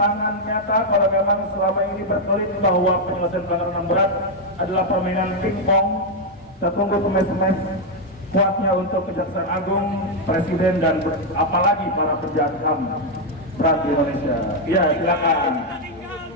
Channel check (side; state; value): both; normal; correlation 0.00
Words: nyata kalau memang selama ini berkelit bahwa penyelesaian pelanggaran HAM berat adalah permainan pingpong. Kita tunggu semes-semes kuatnya untuk Kejaksaan Agung, Presiden, dan apalagi para pejabat HAM berat di Indonesia. Iya, silakan.